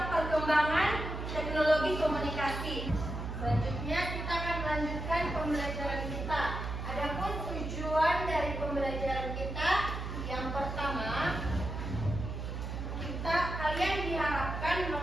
teknologi komunikasi. Selanjutnya kita akan melanjutkan pembelajaran kita. Adapun tujuan dari pembelajaran kita, yang pertama, kalian diharapkan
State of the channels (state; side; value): noise; right; hum, 5 dB below the sound